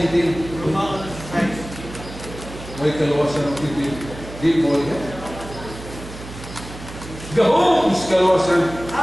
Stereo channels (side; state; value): right; noise; hum, 13 dB below the sound